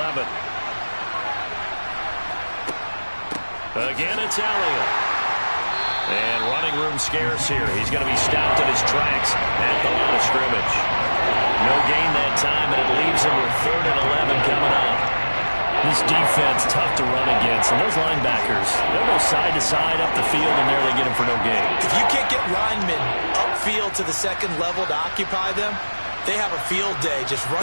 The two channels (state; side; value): inverted; both; correlation -1.00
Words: Again, it's Elliott. And running room scarce here. He's going to be stopped in his tracks at the line of scrimmage. No gain that time, and it leaves him with 3rd and 11 coming up. This defense, tough to run against. And those linebackers, they'll go side to side up the field, and there they get him for no gain. If you can't get linemen upfield to the 2nd level to occupy them, they have a field day just